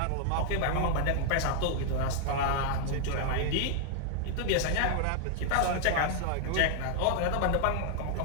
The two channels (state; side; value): different; both; correlation 0.00